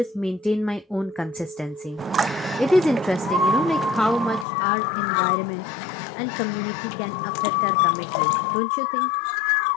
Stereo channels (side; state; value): right; drops out; at 4.5 s